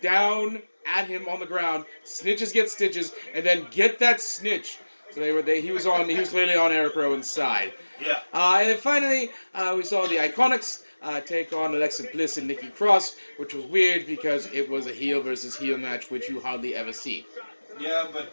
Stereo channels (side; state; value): both; inverted; correlation -1.00